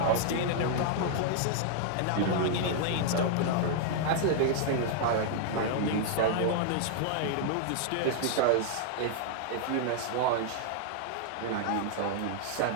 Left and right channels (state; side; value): different; both; correlation -0.01